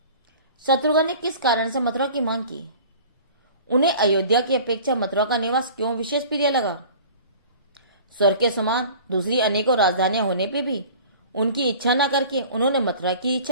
शत्रुघ्न ने किस कारण से मथुरा की मांग की? उन्हें अयोध्या की अपेक्षा मथुरा का निवास क्यों विशेष प्रिय लगा? स्वर्ग के समान दूसरी अनेकों राजधानियां होने पे भी उनकी इच्छा न करके उन्होंने मथुरा की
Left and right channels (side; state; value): both; inverted; correlation -0.44